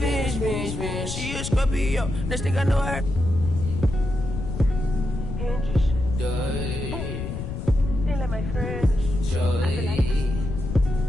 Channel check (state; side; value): noise; left; rumble, 5 dB below the sound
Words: She a Scorpio, next thing I know her. They let my friends.